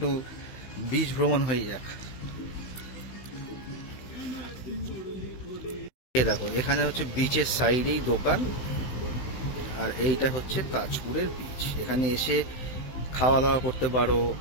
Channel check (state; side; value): late; right; 16 ms